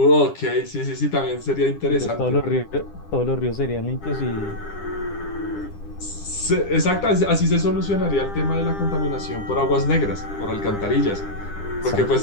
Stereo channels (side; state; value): right; late; 10 ms